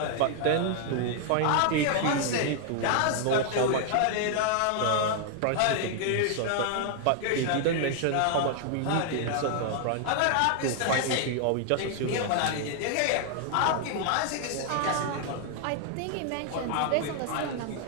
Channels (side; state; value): both; different; correlation 0.00